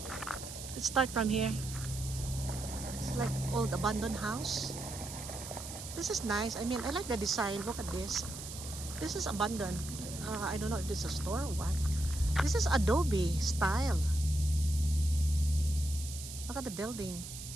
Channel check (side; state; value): right; noise; hiss, 10 dB below the sound